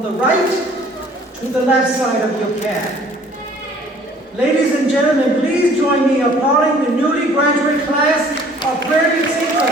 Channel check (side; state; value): both; normal; correlation 0.55